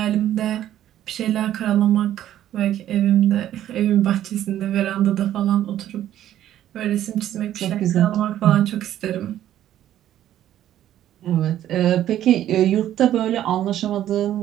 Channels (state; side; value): quieter; left; 12.0 dB